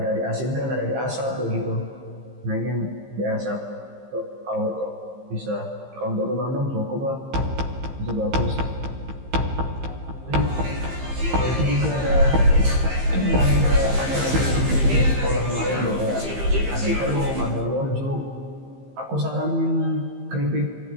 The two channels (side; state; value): left; late; 15 ms